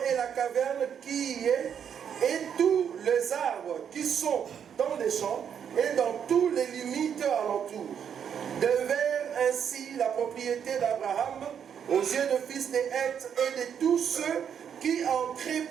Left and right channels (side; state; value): left; quieter; 8.1 dB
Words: et la caverne qui y est, et tous les arbres qui sont dans les champs et dans toutes les limites alentour, devinrent ainsi la propriété d'Abraham aux yeux de fils de Heth et de tous ceux qui entraient